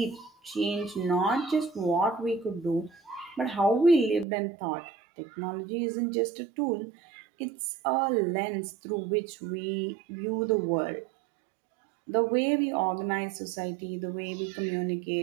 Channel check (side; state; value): left; drops out; at 4.2 s